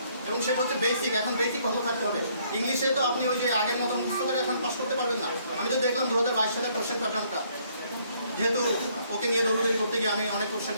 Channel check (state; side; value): inverted; both; correlation -0.66